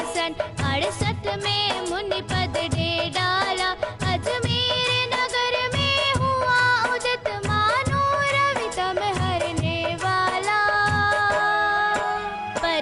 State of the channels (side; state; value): both; identical; correlation 1.00